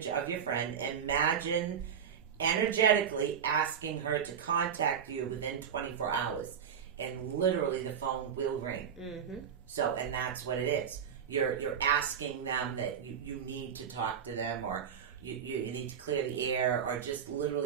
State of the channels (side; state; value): left; quieter; 7.7 dB